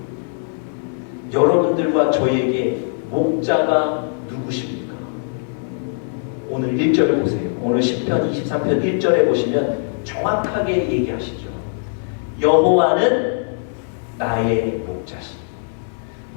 여러분들과 저에게 목자가 누구십니까? 오늘 1절을 보세요. 오늘 10편 23편 1절에 보시면 정확하게 얘기하시죠. 여호와는 나의 목자시니.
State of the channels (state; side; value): silent; right; digital silence